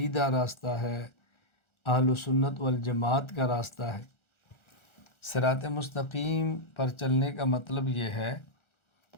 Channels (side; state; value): right; late; 1.4 ms